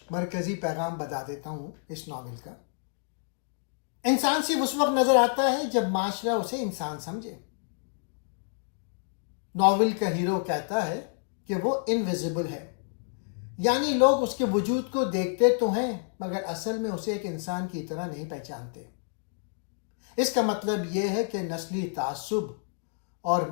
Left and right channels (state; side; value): silent; right; digital silence